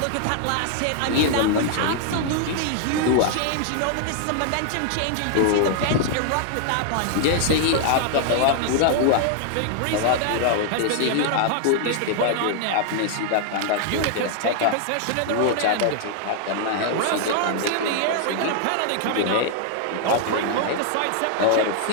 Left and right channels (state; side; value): different; both; correlation 0.00